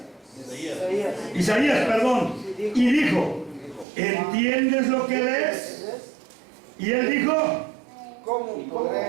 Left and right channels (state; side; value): drops out; left; at 3.9 s